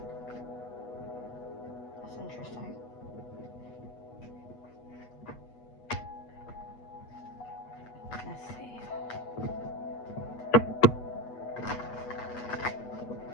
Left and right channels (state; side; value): late; right; 8.2 ms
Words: That's interesting. Let's see.